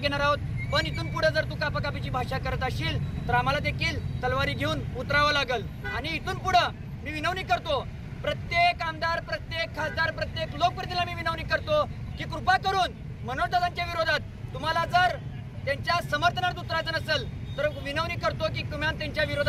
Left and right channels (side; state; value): both; identical; correlation 1.00